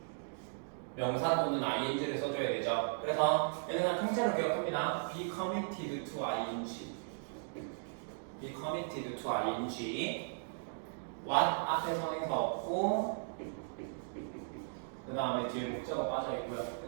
명사 또는 ing를 써줘야 되죠. 그래서 얘는 그냥 통째로 기억합니다. be committed to ing. be committed to ing. what 앞에 선행사 없고 그 다음에 뒤에 목적어 빠져있고요.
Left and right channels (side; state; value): left; silent; digital silence